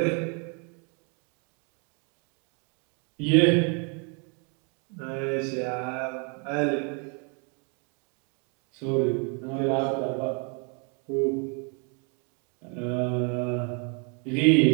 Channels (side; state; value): left; quieter; 36.9 dB